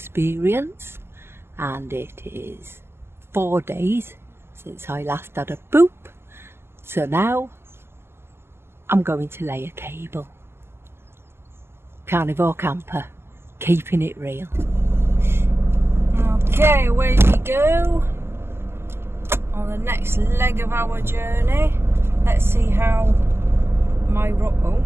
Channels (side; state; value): left; late; 0.12 ms